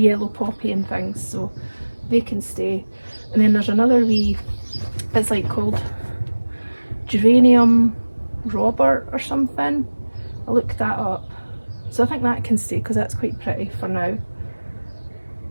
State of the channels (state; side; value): inverted; both; correlation -1.00